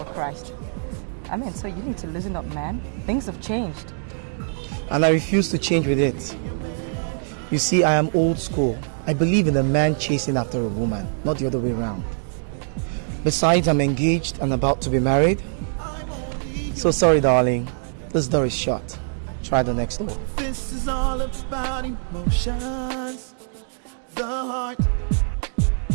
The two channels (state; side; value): silent; left; digital silence